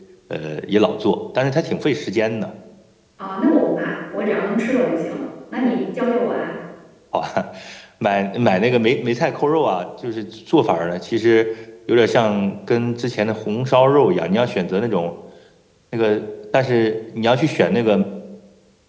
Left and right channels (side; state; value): both; identical; correlation 1.00